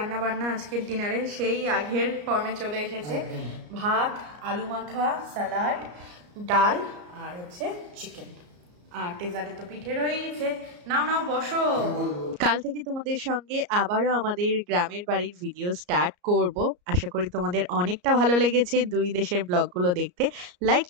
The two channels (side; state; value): left; late; 34 ms